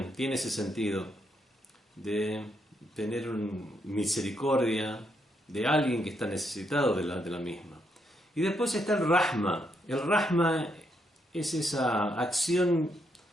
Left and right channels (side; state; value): both; normal; correlation 0.77